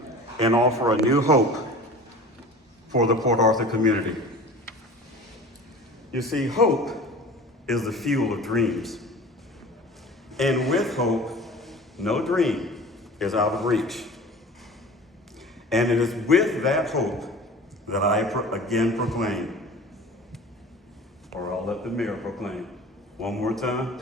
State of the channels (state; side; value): normal; both; correlation 0.40